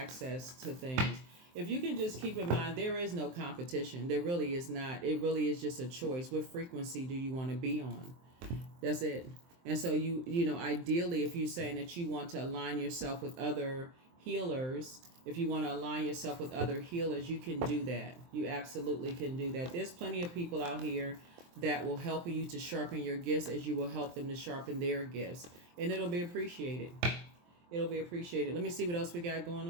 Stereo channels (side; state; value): left; late; 23 ms